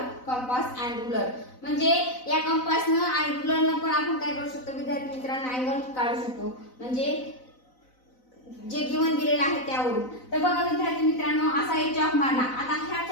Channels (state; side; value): late; right; 4.0 ms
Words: compass and ruler. म्हणजे या कंपासनं आणि रुलरनं पण आपण काय करू शकतो विद्यार्थी मित्रांनो, अँगल काढू शकतो, म्हणजे जे गिवन दिलेलं आहे त्यावरून. तर बघा विद्यार्थी मित्रांनो, असा एक चॉक मारला. आता ह्या